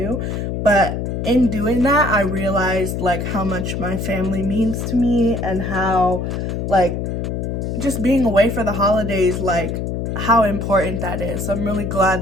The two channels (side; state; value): left; noise; hum, 3 dB below the sound